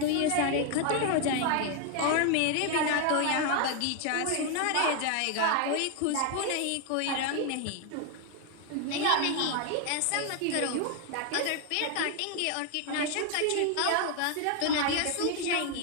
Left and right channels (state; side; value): different; both; correlation 0.01